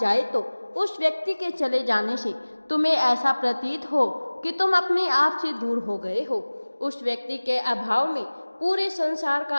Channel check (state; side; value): inverted; both; correlation -1.00